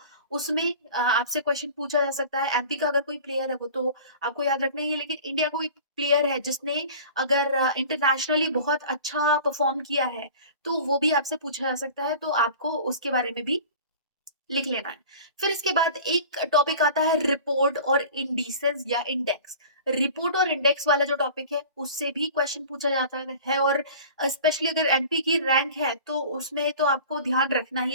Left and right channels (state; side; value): inverted; both; correlation -0.41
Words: उसमें आपसे क्वेश्चन पूछा जा सकता है। एमपी का अगर कोई प्लेयर है, वो तो आपको याद रखना ही है, लेकिन इंडिया कोई प्लेयर है जिसने अगर इंटरनेशनली बहुत अच्छा परफॉर्म किया है, तो वो भी आपसे पूछा जा सकता है, तो आपको उसके बारे में भी लिख लेना है। फिर इसके बाद एक टॉपिक आता है रिपोर्ट और इंडिसेस या इंडेक्स। रिपोर्ट और इंडेक्स वाला जो टॉपिक है, उससे भी क्वेश्चन पूछा जाता है, और स्पेशली अगर एमपी की रैंक है, तो उसमें तो आपको ध्यान रखना ही